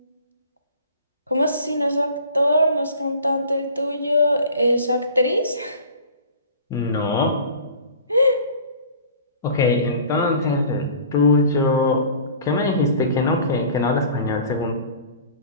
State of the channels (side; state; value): both; inverted; correlation -0.44